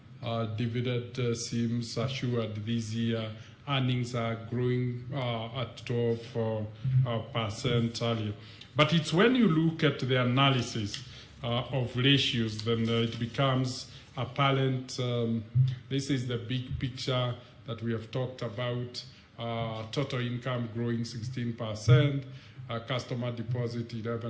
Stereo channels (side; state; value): both; identical; correlation 1.00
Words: dividend seems assured this year. Earnings are growing at 12% earlier. But it's when you look at the analysis of ratios, then it becomes apparent. This is the big picture that we have talked about. Total income growing 16%, customer deposit